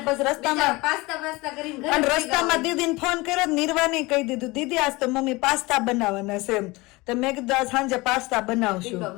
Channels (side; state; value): right; quieter; 22.7 dB